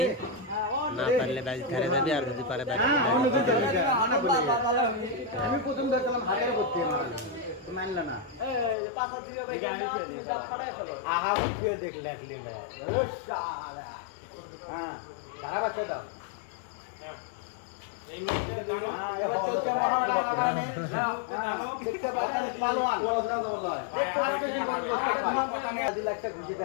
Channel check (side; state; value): right; drops out; at 8.8 s